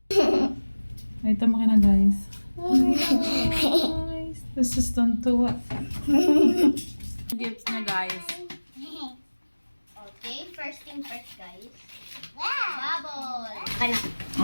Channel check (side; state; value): both; inverted; correlation -1.00